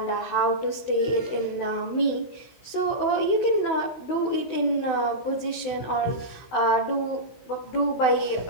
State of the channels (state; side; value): late; right; 16 ms